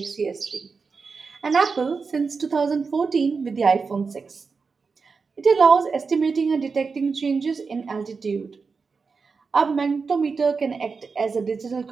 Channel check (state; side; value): quieter; left; 4.9 dB